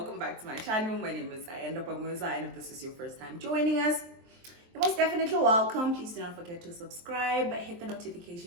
back to my channel. My name is Ayanda Pamuza, and if this is your first time joining us, you're most definitely welcome. Please do not forget to subscribe, hit the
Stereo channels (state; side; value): late; left; 23 ms